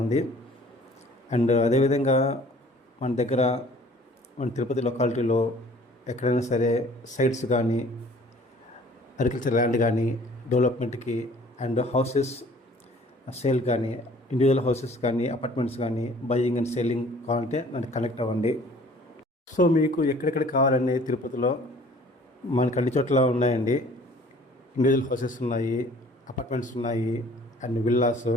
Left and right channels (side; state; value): both; normal; correlation 0.52